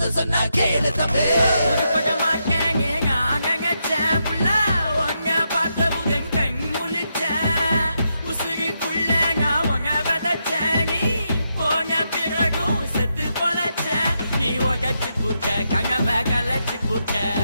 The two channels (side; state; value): both; inverted; correlation -0.82